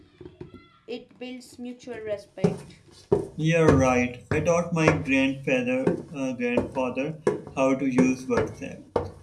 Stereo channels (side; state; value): both; identical; correlation 1.00